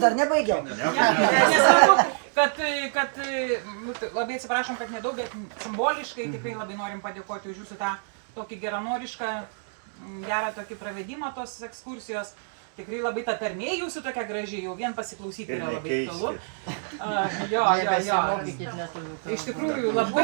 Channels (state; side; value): silent; left; digital silence